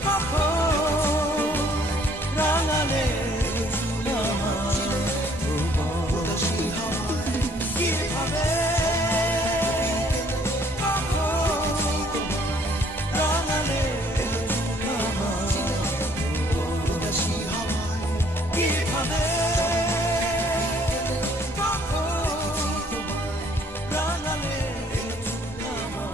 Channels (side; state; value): both; normal; correlation 0.62